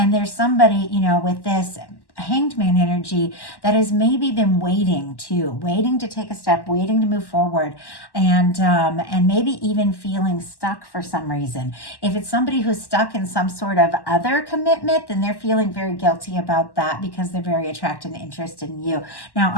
there's somebody, you know, with this Hanged Man energy that has maybe been waiting to take a step, waiting to move forward, and maybe even feeling stuck for some reason. If it's somebody who's stuck in some sort of other commitment, then they're feeling very guilty about that because they're very attracted and interested in you. Now,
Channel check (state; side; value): late; right; 1.1 ms